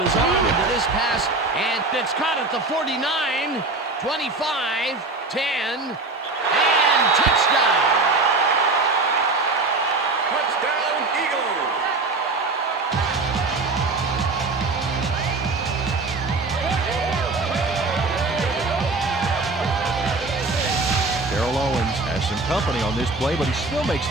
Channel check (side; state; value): left; quieter; 3.5 dB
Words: arm into this pass, and it's caught at the 49, 25, 10, and touchdown. Touchdown, Eagles! Darrell Owens has some company on this play, but he still makes